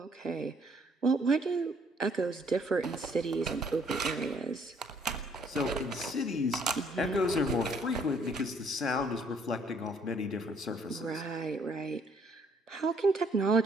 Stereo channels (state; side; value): normal; both; correlation 0.65